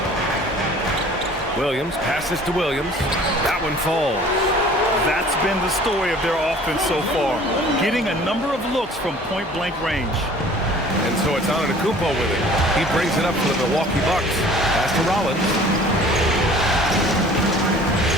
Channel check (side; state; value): both; normal; correlation 0.49